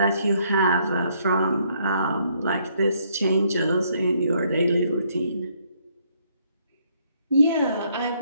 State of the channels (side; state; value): both; inverted; correlation -0.69